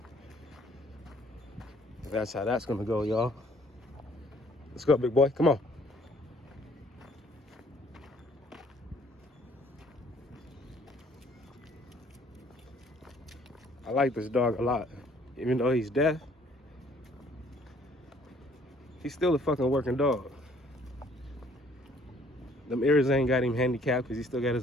That's how that's gonna go, y'all. Let's go, big boy, come on. I like this dog a lot. Even though he's deaf, he's still a fucking working dog. Them ears ain't got him handicapped because he still got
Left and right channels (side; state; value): both; normal; correlation 0.61